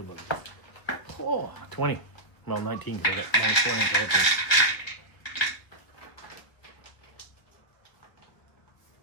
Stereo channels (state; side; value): late; right; 1.8 ms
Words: Oh, 20. Well, 19 because I got minus 1 intelligence.